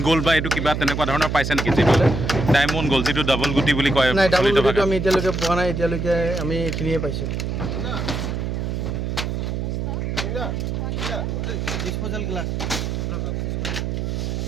গ'ল্ড বা এইটো কিবা তেনেকুৱা ধৰণৰ পাইছে নেকি যিটো ডায়মণ্ড গ'ল্ড যিটো ডাবল গুটি বুলি কয় নাই ডাবল গুটিটো আমি এতিয়ালৈকে পোৱা নাই এতিয়ালৈকে আমি এইখিনিয়ে পাইছোঁ ডিসপোজাল গ্লাস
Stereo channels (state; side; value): noise; right; hum, 2 dB below the sound